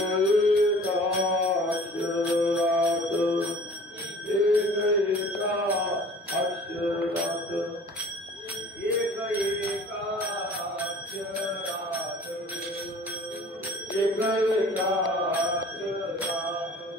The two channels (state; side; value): normal; both; correlation 0.47